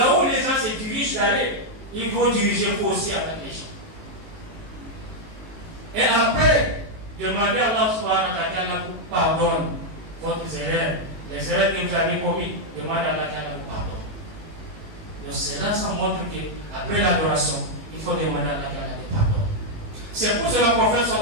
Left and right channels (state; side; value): late; left; 19 ms